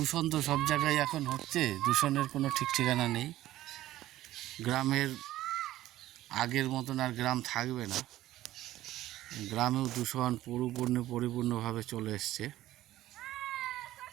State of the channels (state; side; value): quieter; left; 14.7 dB